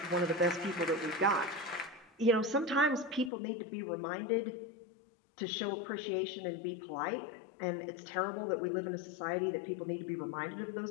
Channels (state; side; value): drops out; right; at 3.3 s